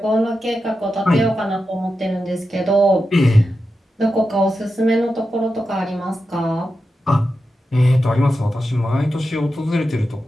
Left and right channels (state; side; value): normal; both; correlation 0.90